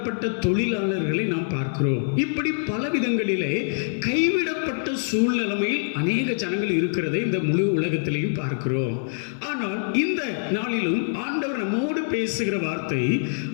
தொழிலாளர்களை நாம் பார்க்கிறோம். இப்படி பல விதங்களிலே கைவிடப்பட்ட சூழ்நிலைமையில் அநேக ஜனங்கள் இருக்கிறதை இந்த முழு உலகத்திலையும் பார்க்கிறோம். ஆனால் இந்த நாளிலும் ஆண்டவர் நம்மோடு பேசுகிற வார்த்தை,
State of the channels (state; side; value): silent; right; digital silence